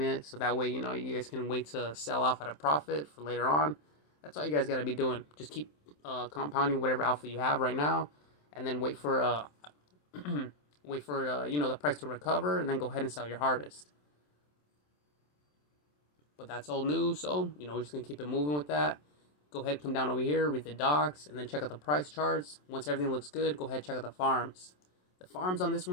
so that way you guys can wait to sell off at a profit for later on. That's all you guys got to be doing. Just keep compounding whatever alpha you have right now, and then wait for the price to recover, and then go ahead and sell your harvest. But that's old news, so we're just gonna keep it moving with that. Go ahead, come down over here, read the docs, and then check out the price charts. Once everything looks good, go ahead, check out the farms. The farms on this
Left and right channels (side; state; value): right; late; 27 ms